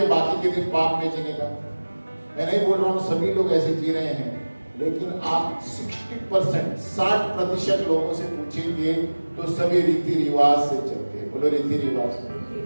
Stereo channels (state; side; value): inverted; both; correlation -1.00